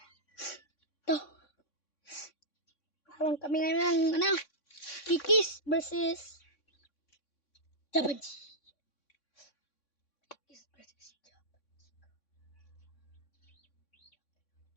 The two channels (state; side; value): late; right; 3.6 ms